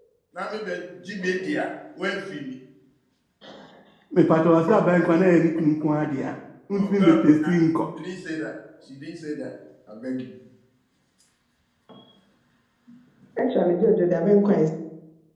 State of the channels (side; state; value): both; identical; correlation 1.00